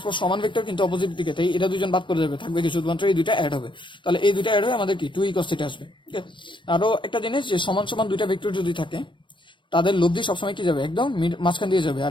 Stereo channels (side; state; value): right; late; 0.23 ms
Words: সমান ভেক্টর কিন্তু অপোজিট দিকে, তাই এটা দুজন বাদ করে যাবে, থাকবে কি শুধুমাত্র এই দুইটা অ্যাড হবে। তাহলে এই দুইটা অ্যাড হয়ে আমাদের কি 2e cos থিটা আসবে। ওকে, আরো একটা জিনিস, যে সমান সমান দুইটা ভেক্টর যদি থাকে তাদের লব্ধি সবসময় কি যাবে একদম মাঝখান দিয়ে যাবে,